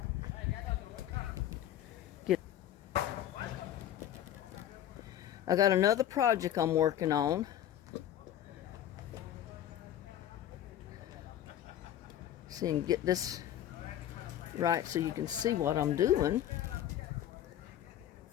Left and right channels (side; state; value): right; quieter; 11.4 dB